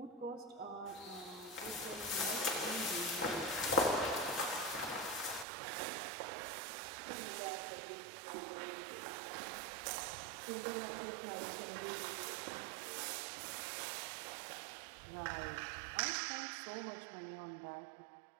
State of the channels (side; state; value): left; drops out; at 5.5 s